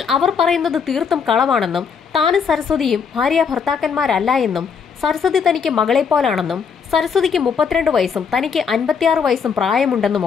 അവർ പറയുന്നത് തീർത്തും കളവാണെന്നും താനും സരസ്വതിയും ഭാര്യ ഭർത്താക്കന്മാരല്ല എന്നും സരസ്വതി തനിക്ക് മകളെപ്പോലാണെന്നും സരസ്വതിക്ക് 32 വയസ്സും തനിക്ക് 56 വയസ്സും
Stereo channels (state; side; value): quieter; right; 6.3 dB